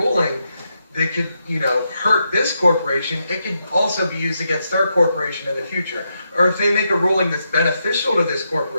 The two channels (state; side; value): inverted; both; correlation -0.83